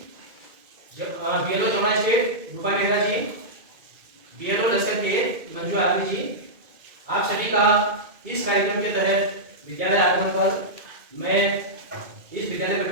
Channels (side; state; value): left; late; 2.2 ms